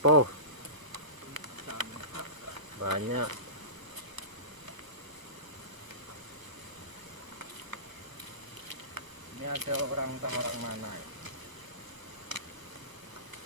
Banyak. Ini ada orang mana?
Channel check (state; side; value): late; left; 1.1 ms